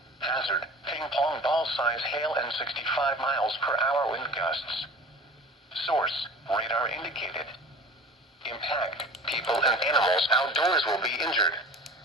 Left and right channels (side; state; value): both; normal; correlation 0.40